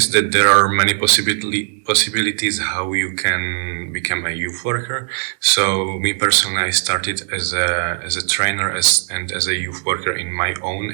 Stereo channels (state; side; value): silent; left; 66 dB below the other